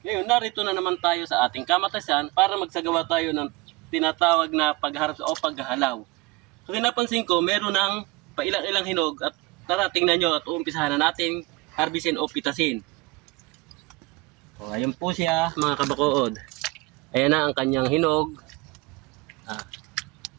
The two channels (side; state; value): left; quieter; 22.7 dB